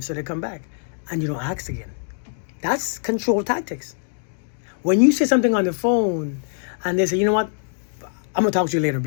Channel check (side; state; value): right; silent; digital silence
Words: so they come back. And you don't ask again. That's control tactics. When you say something on the phone and they say, you know what, I'm gonna talk to you later